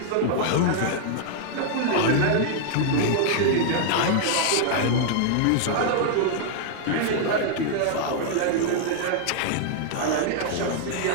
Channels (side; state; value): both; different; correlation -0.01